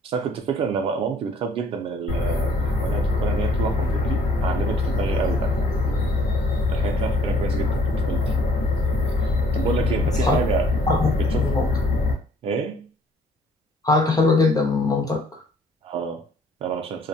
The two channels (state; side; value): normal; both; correlation 0.59